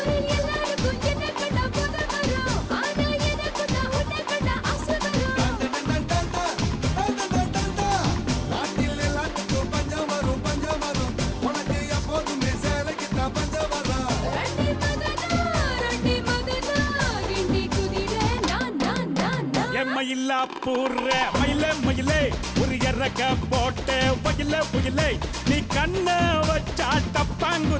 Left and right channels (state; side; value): identical; both; correlation 1.00